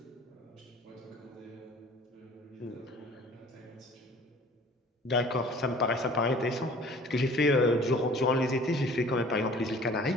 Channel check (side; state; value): both; normal; correlation 0.49